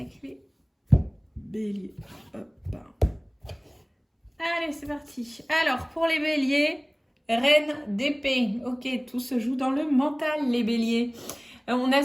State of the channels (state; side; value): identical; both; correlation 1.00